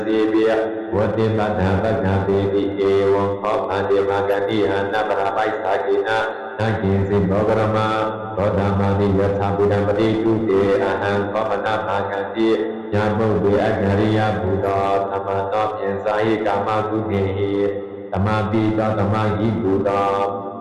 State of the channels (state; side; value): identical; both; correlation 1.00